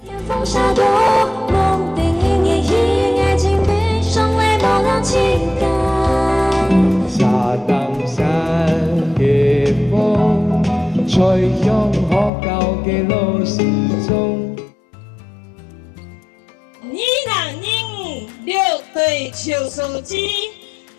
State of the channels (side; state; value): right; drops out; at 12.3 s